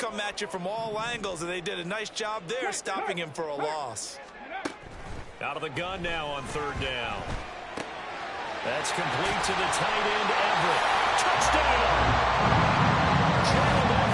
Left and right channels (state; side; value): identical; both; correlation 1.00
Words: at you from all angles, and they did a nice job there stopping him for a loss. Out of the gun now on 3rd down. That's complete to the tight end, Everett. Touchdown! Gerald